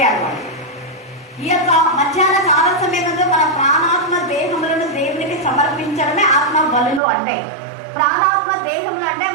వాడు. ఈ యొక్క మధ్యాహ్న కాల సమయంలో మన ప్రాణాత్మ దేహములను దేవునికి సమర్పించడమే ఆత్మ బలులు అంటే. ప్రాణాత్మ దేహములు అంటే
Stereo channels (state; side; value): drops out; left; at 7.0 s